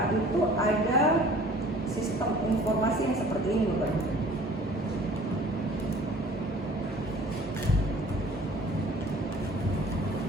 itu ada sistem informasi yang seperti ini, Bapak.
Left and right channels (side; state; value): both; normal; correlation 0.50